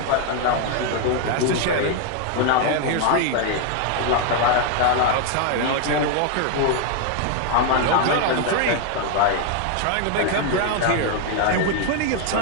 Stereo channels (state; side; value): different; both; correlation 0.00